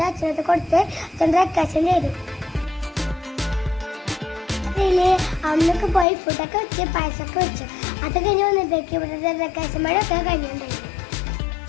അച്ഛനൊക്കെ കൊടുത്ത് അച്ഛൻ ഡെക്കറേഷൻ ചെയ്തു. അന്നൊക്കെ പോയി ഫുഡൊക്കെ വെച്ച് പായസമൊക്കെ വെച്ചു. അത് കഴിഞ്ഞ് വന്നപ്പോഴേക്കും ഇവിടെ ഡെക്കറേഷൻ മഴയൊക്കെ കഴിഞ്ഞിട്ടുണ്ടായിരുന്നു.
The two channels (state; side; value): drops out; right; at 6.1 s